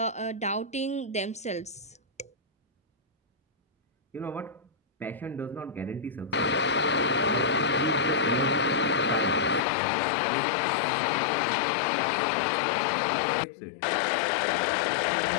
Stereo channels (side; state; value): right; drops out; at 9.6 s